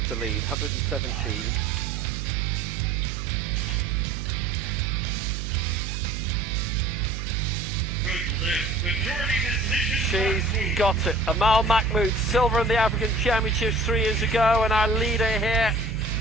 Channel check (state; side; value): noise; right; hum, 5 dB below the sound